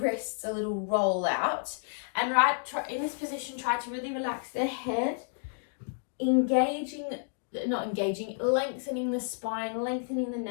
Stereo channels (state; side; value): silent; right; digital silence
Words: a little roll out. And in this position, try to really relax the head. Lengthening the spine, lengthening the